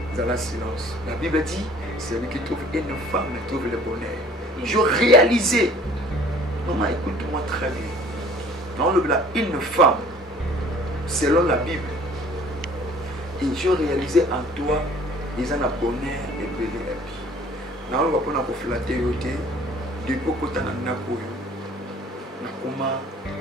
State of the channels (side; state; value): both; normal; correlation 0.52